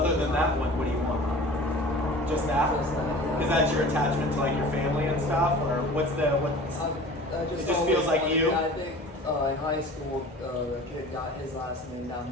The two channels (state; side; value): normal; both; correlation 0.41